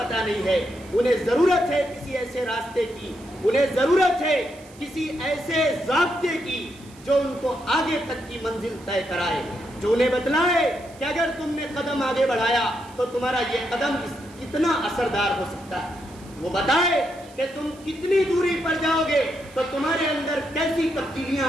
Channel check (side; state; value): right; noise; hiss, 24 dB below the sound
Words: نہیں ہے۔ انہیں ضرورت ہے کسی ایسے راستے کی، انہیں ضرورت ہے کسی ایسے ضابطے کی جو ان کو آگے تک کی منزل طے کرائے، جو انہیں بتلائے کہ اگر تم نے قدم آگے بڑھایا تو تمہارا یہ قدم کتنا اثردار ہو سکتا ہے، وہ بتائے کہ تم کتنی دوری پر جاؤ گے تو تمہارے اندر کیسی تبدیلیاں